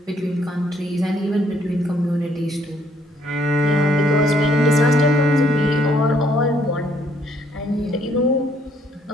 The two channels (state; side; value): normal; both; correlation 0.67